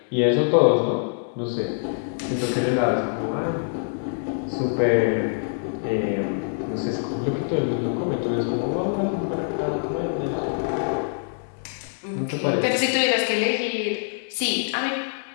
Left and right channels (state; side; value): silent; right; 62 dB below the other